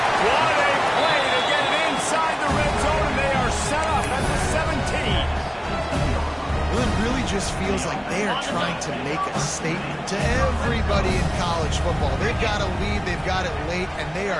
What a play to get it inside the red zone, and they are set up at the 17. Well, it really just feels like they are trying to make a statement to everybody in college football. They've got a lead, they've got it late, and they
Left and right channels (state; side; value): identical; both; correlation 1.00